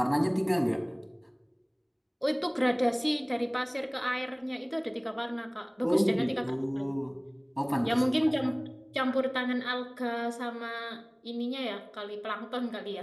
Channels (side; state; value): both; identical; correlation 1.00